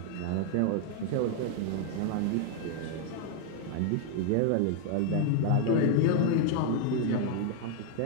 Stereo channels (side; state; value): both; different; correlation 0.00